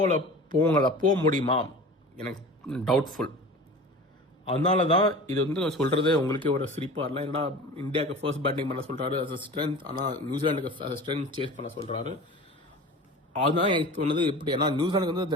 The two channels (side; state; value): both; normal; correlation 0.36